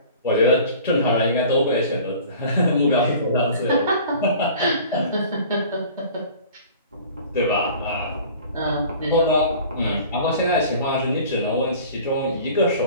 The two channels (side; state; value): both; inverted; correlation -0.45